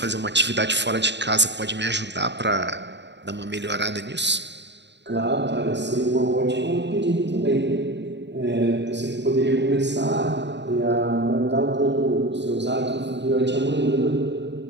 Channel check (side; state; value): left; late; 0.51 ms